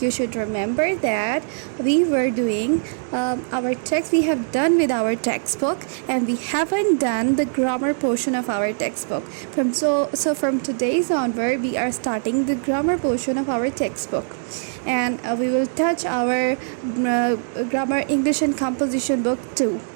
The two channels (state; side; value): silent; left; digital silence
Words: should remember that we were doing our text. We have done with our textbook, and we haven't done the grammar portion of our textbook. From today's onward, we are starting the grammar portion of our textbook, and we will touch our grammar English and composition book too.